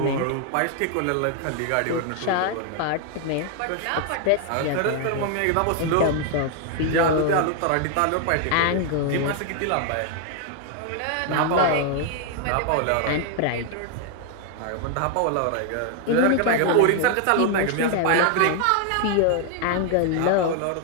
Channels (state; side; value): different; both; correlation 0.00